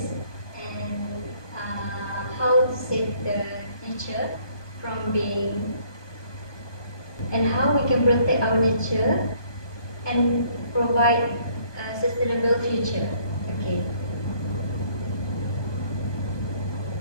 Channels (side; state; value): right; late; 1.2 ms